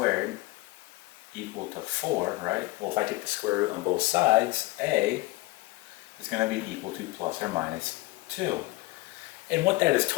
equal to 4, right? Well, if I take the square root on both sides, a is going to be equal to plus or minus 2. And what that is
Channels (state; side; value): quieter; right; 21.0 dB